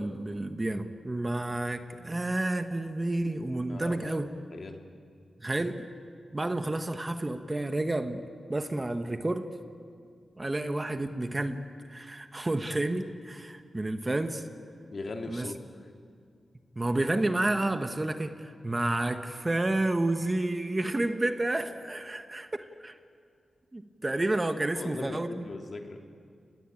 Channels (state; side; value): normal; both; correlation 0.98